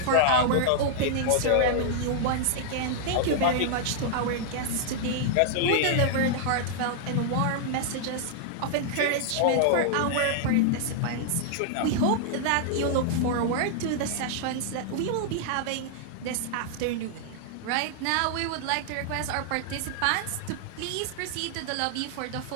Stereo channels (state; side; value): different; both; correlation -0.01